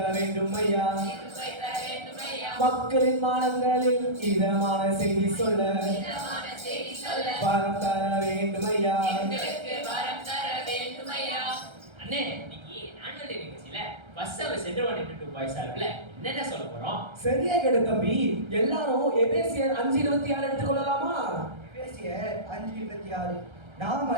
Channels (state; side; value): late; left; 1.3 ms